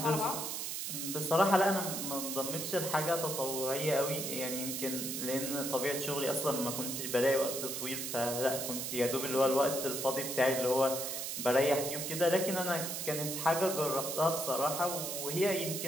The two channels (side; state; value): right; noise; hiss, 4 dB below the sound